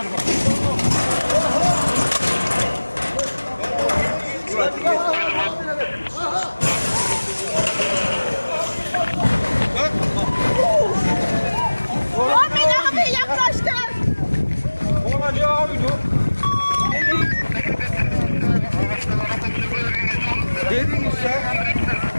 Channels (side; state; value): both; inverted; correlation -1.00